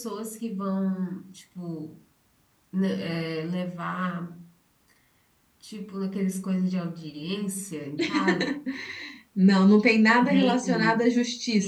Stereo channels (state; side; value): identical; both; correlation 1.00